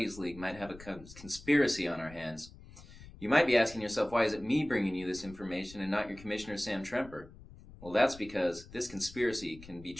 League might have a conspiracy on our hands. You might be asking yourself, why is it me bringing you this information and not your Commissioner Sam Tremper? Well, that's because this conspiracy can be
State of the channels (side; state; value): left; noise; rumble, 18 dB below the sound